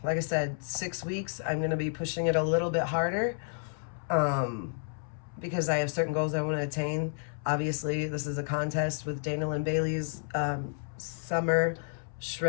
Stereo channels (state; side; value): silent; right; 57 dB below the other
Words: like I said, 6 weeks. I'm going to be pushing it a little bit harder because I have certain goals I want to attain. Obviously, this is a contest with Dana Lynn Bailey's Summer